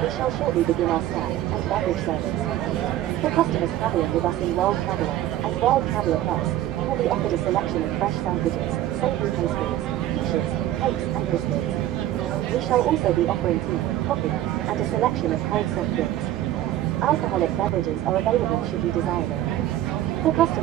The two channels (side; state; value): left; quieter; 13.4 dB